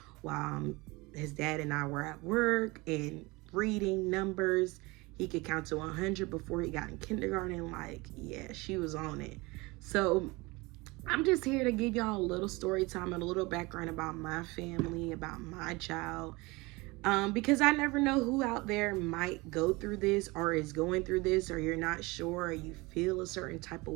while his dad and I were at work, and reading numbers. He could count to 100 before he got in kindergarten. Like, yeah, she was on it. So I'm just here to give y'all a little story time and a little background about my family, about my child. Because I never know who out there might go through this or is going through this, or you're not sure, or you feel a certain type of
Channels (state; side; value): quieter; left; 24.0 dB